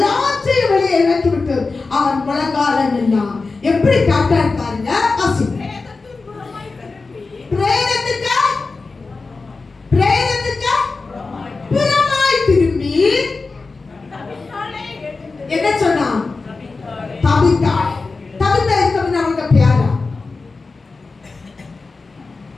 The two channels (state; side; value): quieter; right; 4.0 dB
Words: வெளியே இறக்கி விட்டு அவன் முழங்கால நின்னான். எப்படி காட்டான் பாருங்க. பிரேதத்துக்கு புறமாய் திரும்பி என்ன சொன்னான்? தபித்தாள். தபித்தா இருக்கணும் அவங்க பேரா.